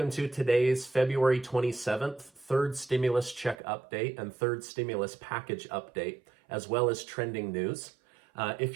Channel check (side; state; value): left; drops out; at 3.6 s